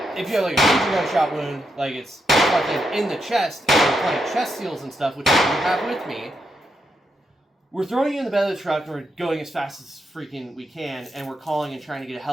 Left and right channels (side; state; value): both; normal; correlation 0.82